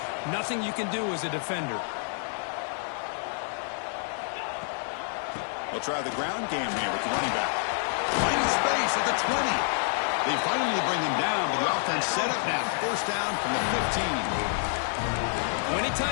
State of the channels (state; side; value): silent; right; 59 dB below the other